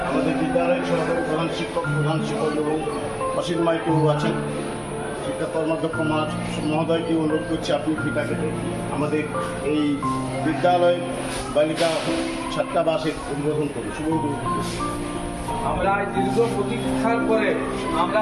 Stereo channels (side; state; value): both; identical; correlation 1.00